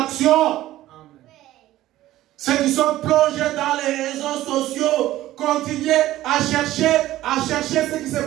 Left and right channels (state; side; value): quieter; left; 14.9 dB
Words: Ceux qui sont plongés dans les réseaux sociaux, continuez à chercher ce qui se